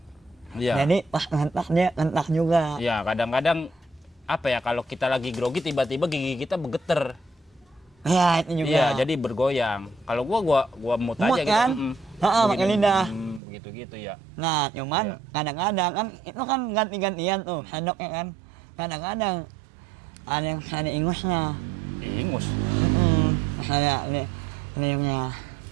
Iya. Jadi pas ngentak dia ngentak juga. Iya, kadang-kadang apa ya kalau kita lagi grogi tiba-tiba gigi kita bergeter. Ya itu juga. Iya, jadi bergoyang. Kalau gua mut Mut aja kan? gitu. Heeh, pakai Begini, lidah. Begitu-gitu ya. Nah cuman Iya. kadang-kadang kan itu kan ganti-gantian tuh sendoknya kan. Kadang-kadang ada ingusnya. Ingus. Ada liurnya.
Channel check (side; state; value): left; drops out; at 13.4 s